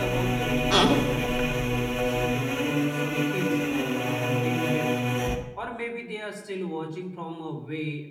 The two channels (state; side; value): identical; both; correlation 1.00